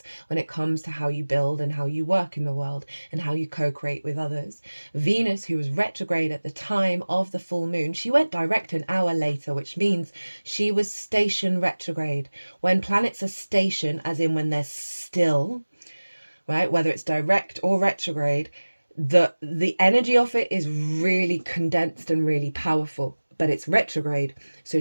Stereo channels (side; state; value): both; inverted; correlation -1.00